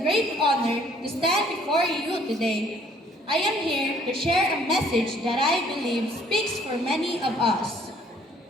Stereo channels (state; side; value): normal; both; correlation 0.61